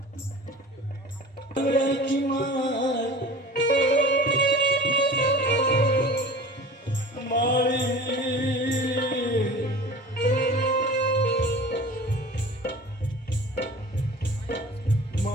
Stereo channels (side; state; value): both; normal; correlation 0.40